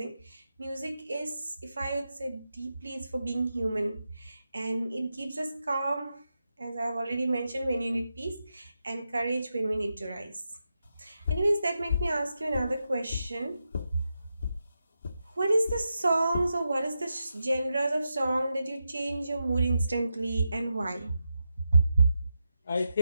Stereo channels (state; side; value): inverted; both; correlation -0.88